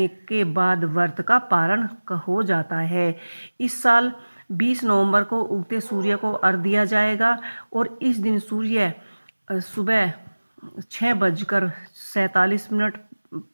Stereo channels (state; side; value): inverted; both; correlation -1.00